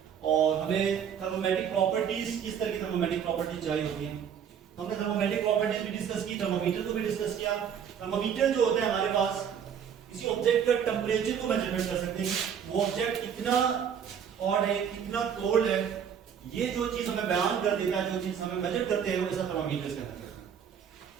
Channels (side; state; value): left; quieter; 8.0 dB